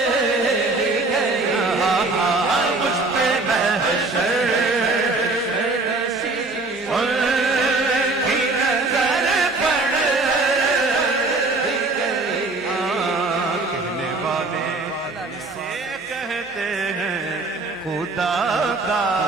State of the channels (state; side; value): quieter; left; 3.4 dB